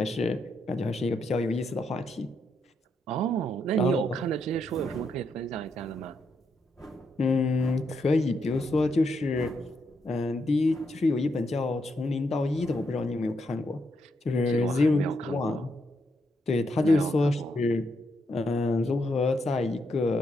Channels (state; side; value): normal; both; correlation 0.79